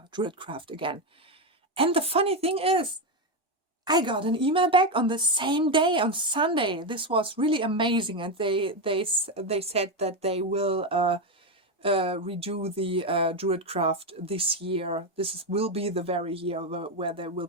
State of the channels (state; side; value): normal; both; correlation 0.09